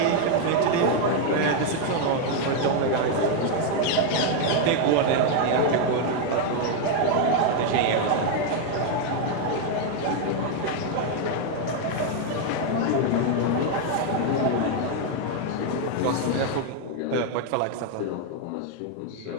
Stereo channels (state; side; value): different; both; correlation 0.01